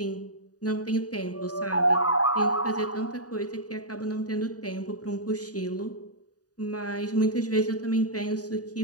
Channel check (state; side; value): late; right; 0.68 ms